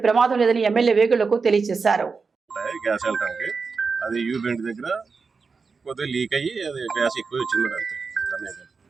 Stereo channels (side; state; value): left; quieter; 4.8 dB